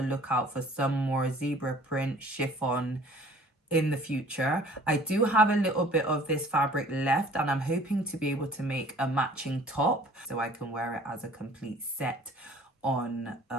lookout for some more zebra print chiffon in the future. I do have a little bit of this fabric left, and I'm hoping to be able to make a matching top so I can wear it as a complete set on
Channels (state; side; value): normal; both; correlation 0.51